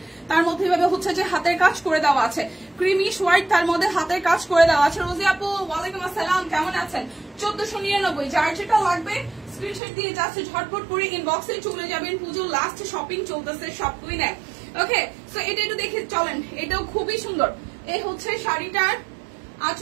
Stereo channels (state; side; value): drops out; left; at 9.8 s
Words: তার মধ্যে এভাবে হচ্ছে যে হাতের কাজ করে দেওয়া আছে, ক্রিমিশ হোয়াইট তার মধ্যে হাতের কাজ করে দেওয়া আছে। রোজি আপু ওয়ালাইকুম আসসালাম, কেমন আছেন? 1499, যার যেটা লাগবে স্ক্রিনশট দিয়ে যাচ্ছে, ঝটপট করে ইনবক্সে চলে যাবেন। পুজোর লাস্ট শপিং চলতেছে, সব কুইনে। ওকে, সো এটা একটু দেখে চলেন, এটাও খুবই সুন্দর। এই হচ্ছে শাড়িটার